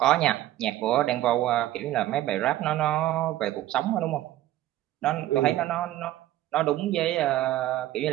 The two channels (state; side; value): quieter; left; 14.4 dB